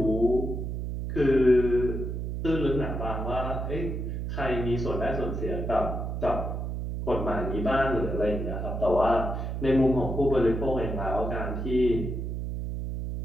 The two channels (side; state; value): right; noise; hum, 3 dB below the sound